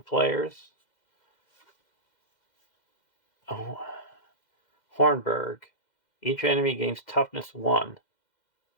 players. Oh. Hornburg. Each enemy gains toughness 1.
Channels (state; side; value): late; right; 2.1 ms